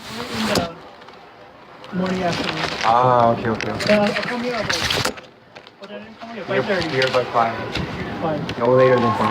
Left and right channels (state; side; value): identical; both; correlation 1.00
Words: the morning afternoon. Ah, okay. I'll come here about. What time did you come here? 5:30. Here by 5. Fine. No later than 5.